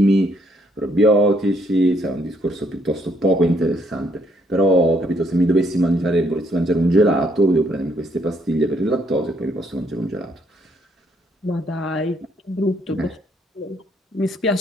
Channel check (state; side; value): normal; both; correlation 0.70